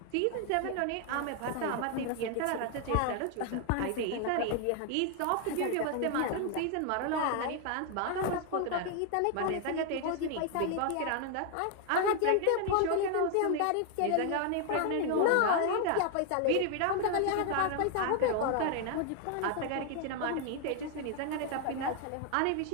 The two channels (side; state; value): both; different; correlation 0.00